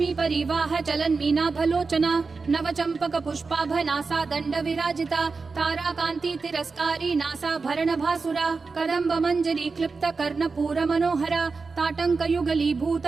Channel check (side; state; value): left; quieter; 4.4 dB